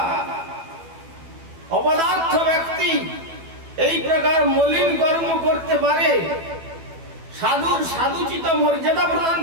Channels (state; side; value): late; left; 12 ms